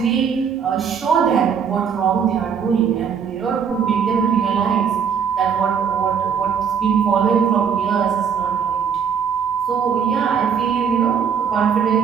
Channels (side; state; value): left; quieter; 7.1 dB